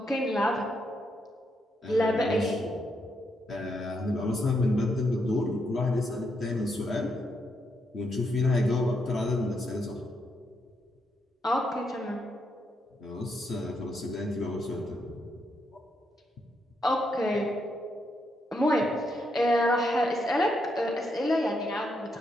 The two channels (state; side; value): normal; both; correlation 0.79